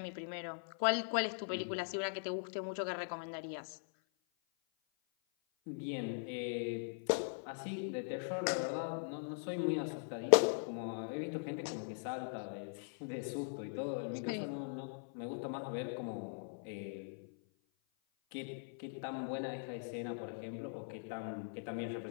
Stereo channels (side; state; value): right; silent; 51 dB below the other